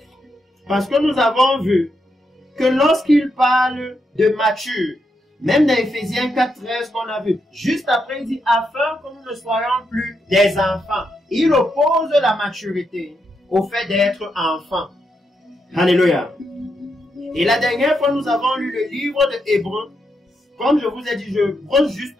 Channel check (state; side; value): normal; both; correlation 0.82